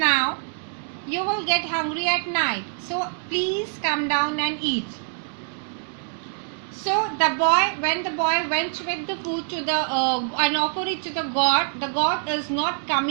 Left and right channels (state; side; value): silent; left; 60 dB below the other